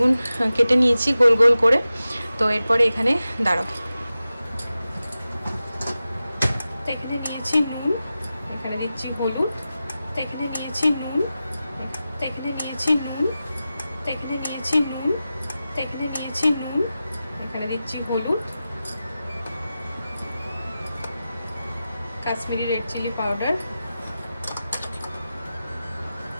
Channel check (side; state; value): both; inverted; correlation -0.94